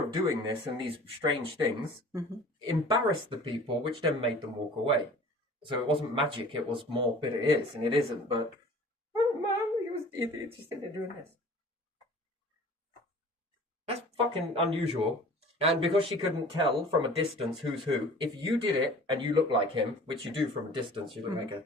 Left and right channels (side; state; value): both; normal; correlation 0.45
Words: of doing this and these strange things embarrassed the people, which then made them walk away. So it wasn't magic, it was more, but it is, and it isn't, but man, he just sitting there doing this. That's fucking unusual. And because she couldn't tell from a distance who's who, if you did it and you look like him, which you do from a distance, you look like a